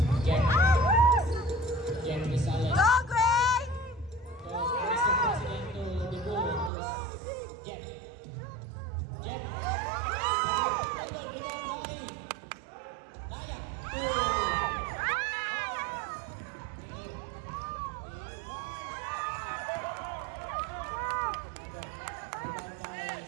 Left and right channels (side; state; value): left; drops out; at 6.7 s